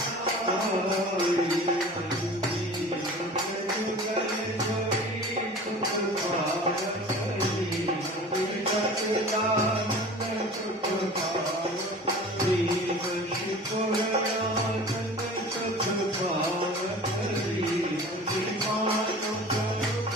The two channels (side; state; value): both; normal; correlation 0.40